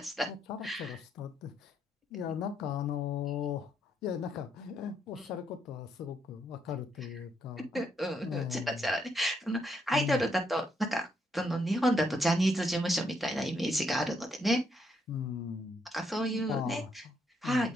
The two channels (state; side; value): normal; both; correlation 0.75